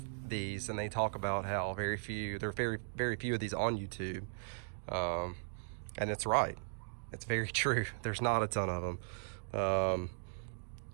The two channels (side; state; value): left; silent; digital silence